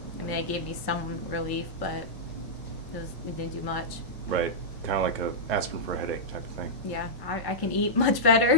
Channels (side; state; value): both; normal; correlation -0.10